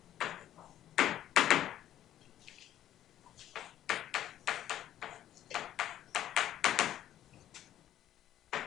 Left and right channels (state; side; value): quieter; right; 12.0 dB